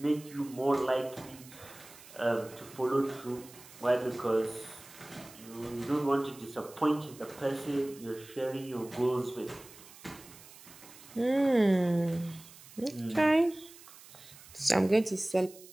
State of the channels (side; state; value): right; noise; hiss, 20 dB below the sound